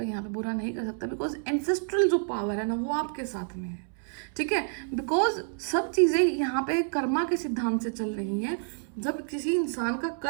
यहाँ पे बुरा नहीं कर सकता, बिकॉज एंसेस्ट्रल जो पावर है ना वो आपके साथ में है, ठीक है। बिकॉज सब चीज़ें यहाँ पे कर्मा के सिद्धांत से चल रही हैं। जब किसी इंसान का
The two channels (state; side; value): silent; left; 59 dB below the other